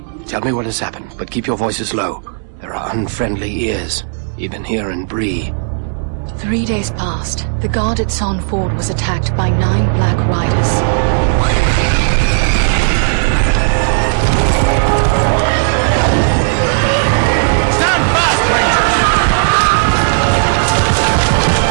tell me what has happened, but keep your voices low. There are unfriendly ears, even here in Bree. 3 days passed. The guard at Sarn Ford was attacked by 9 Black Riders. Stand fast, Rangers!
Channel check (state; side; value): silent; left; digital silence